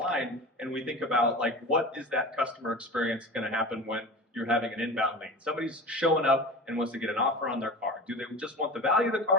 and we think about, like, what is that customer experience gonna happen when you're having an inbound lead? Somebody's showing up and wants to get an offer on their car. Do they just want the value of the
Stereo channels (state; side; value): normal; both; correlation 0.32